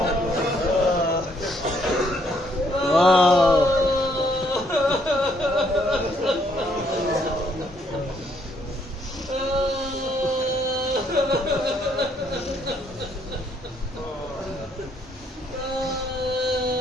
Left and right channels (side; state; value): both; normal; correlation 0.69